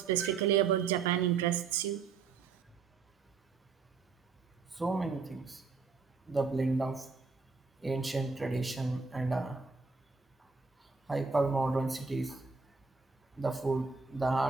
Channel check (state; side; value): quieter; left; 4.8 dB